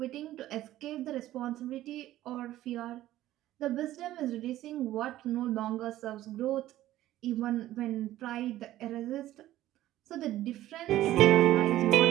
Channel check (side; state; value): left; quieter; 14.4 dB